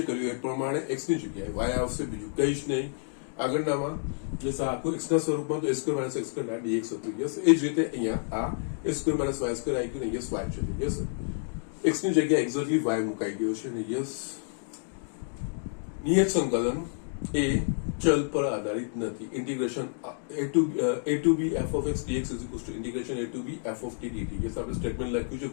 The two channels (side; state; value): right; silent; digital silence